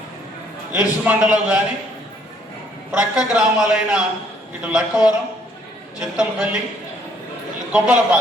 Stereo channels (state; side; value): normal; both; correlation 0.65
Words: ఇరుసుమండలో కానీ ప్రక్క గ్రామాలైన ఇటు లక్కవరం, చింతలపల్లి,